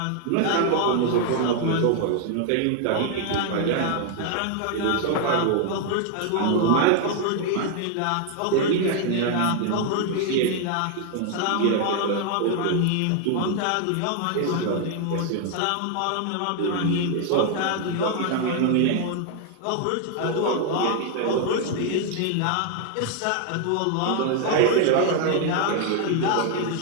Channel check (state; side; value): different; both; correlation 0.00